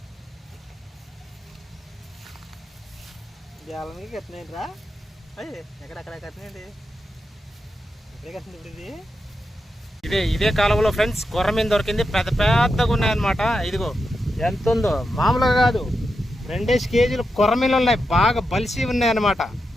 గ్యాలనికి కట్టినాయండి రా, ఎక్కడెక్కడ కట్టినాయండి, ఎక్కడే కట్టింది ఇప్పుడు ఇది. ఇదే కాలంలో ఫ్రెండ్స్ కొర్రమీను దొరికింది, పెద్ద పెద్దగా ఉన్నాయన్నమాట. ఇదిగో ఎంత ఉందో, మామూలుగా కాదు, 2 కేజీలు కొర్రమీన్లు ఉన్నాయి, బాగా బలిసి ఉన్నాయన్నమాట.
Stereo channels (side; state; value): both; normal; correlation 0.87